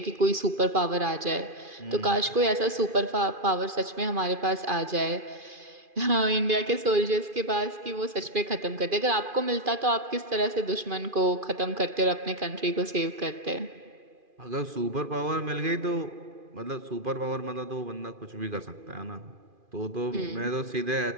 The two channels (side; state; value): left; late; 2.4 ms